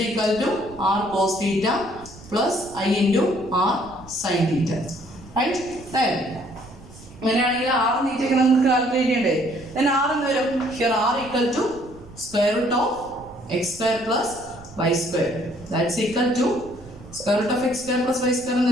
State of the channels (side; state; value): right; noise; rumble, 19 dB below the sound